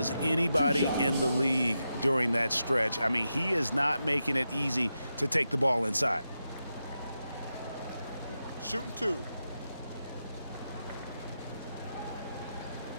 anybody in the league during that stretch. I mean, he is not making it easy to take the ball inside. Shooting 2.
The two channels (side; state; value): both; inverted; correlation -0.88